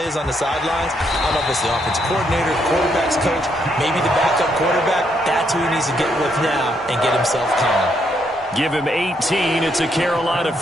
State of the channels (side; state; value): both; normal; correlation 0.75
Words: is on the sidelines, I don't know if it's the offensive coordinator, the quarterback's coach, maybe the backup quarterback, that's who he needs to get with now and get himself calm. Give him 18. It's a Carolina